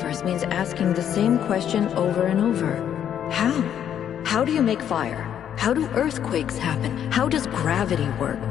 means asking the same question over and over. How? How do you make fire? How do earthquakes happen? How does gravity work?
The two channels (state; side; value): quieter; right; 9.6 dB